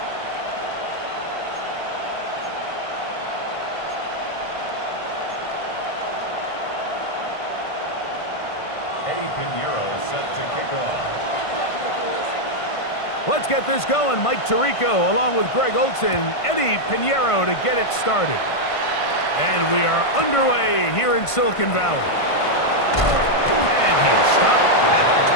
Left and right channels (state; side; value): late; right; 1.5 ms